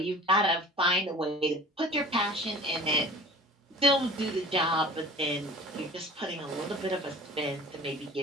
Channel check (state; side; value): normal; both; correlation 0.43